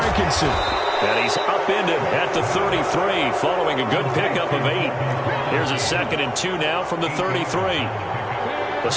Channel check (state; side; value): identical; both; correlation 1.00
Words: And he's upended at the 33 following a good pickup of 8. Here's a 2nd and 2 now from the 33. The